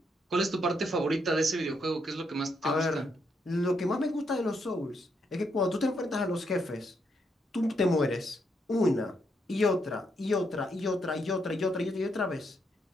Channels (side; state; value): both; normal; correlation 0.77